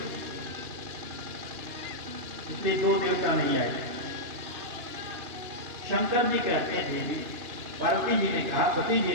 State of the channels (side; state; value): left; late; 2.9 ms